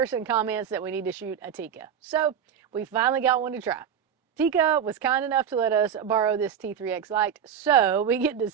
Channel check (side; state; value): left; quieter; 8.3 dB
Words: comments that we need to shoot a Tikka. So we finally got one to try. Tikka was kind enough to let us borrow this T3x Lite, so we get to